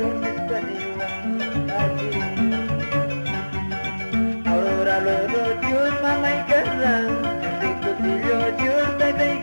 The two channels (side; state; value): both; inverted; correlation -1.00